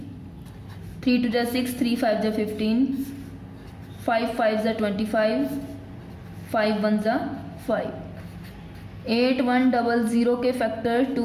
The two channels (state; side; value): identical; both; correlation 1.00